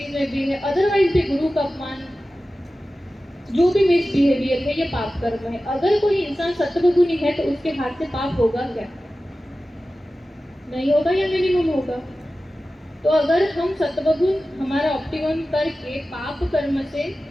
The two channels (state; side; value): normal; both; correlation 0.95